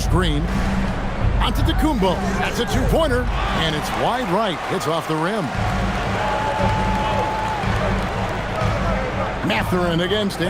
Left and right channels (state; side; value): identical; both; correlation 1.00